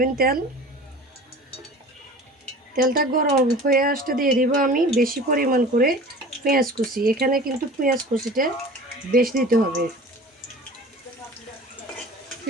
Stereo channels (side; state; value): both; normal; correlation 0.40